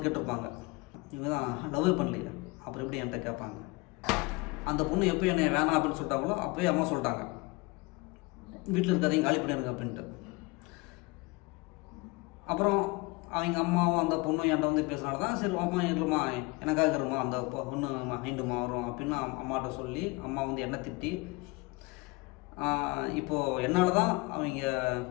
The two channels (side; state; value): right; quieter; 25.0 dB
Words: கேட்டிருப்பாங்க, இவங்க தான் லவ்வே பண்ணலையே அப்புறம் எப்படி என்கிட்ட கேட்பாங்க. அந்த பொண்ணு எப்போ என்னை வேணாம் அப்படின்னு சொல்லிட்டாங்களோ அப்போயே அம்மா சொல்லிட்டாங்க, வீட்டில் இருக்காதையும் காலி பண்ணிடுங்க அப்படின்ட்டு. அப்புறம் அவங்க அம்மாவும் அந்த பொண்ணும் என்கிட்ட வந்து பேசுனால தான் சரி அம்மா இருமா எனக்காக இருமா அந்த பொண்ணு மைண்டுமா வரும் அப்படின்னு அம்மாட்ட சொல்லி அம்மா வந்து என்னை திட்டி இப்போது என்னால் தான் அவங்க